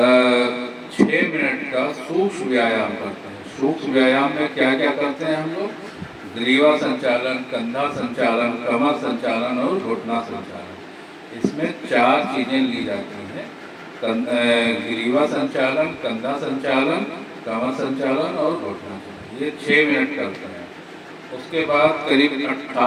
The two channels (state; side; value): identical; both; correlation 1.00